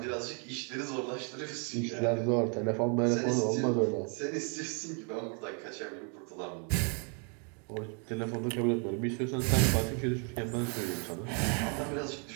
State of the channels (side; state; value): left; quieter; 38.6 dB